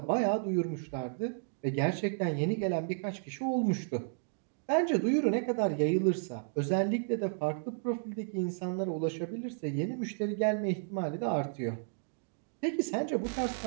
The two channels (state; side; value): silent; left; digital silence